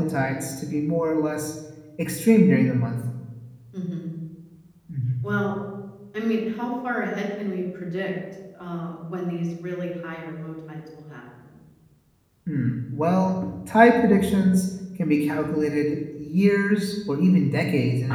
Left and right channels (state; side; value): identical; both; correlation 1.00